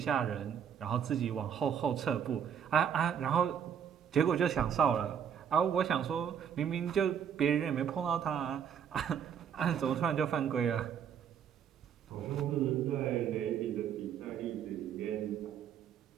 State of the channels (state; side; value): quieter; left; 8.3 dB